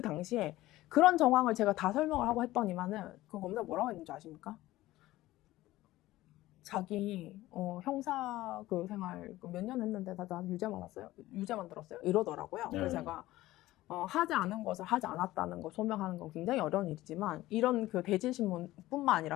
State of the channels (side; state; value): right; quieter; 16.7 dB